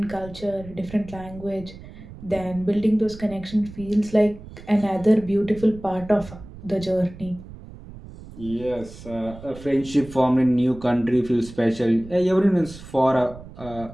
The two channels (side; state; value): right; noise; rumble, 16 dB below the sound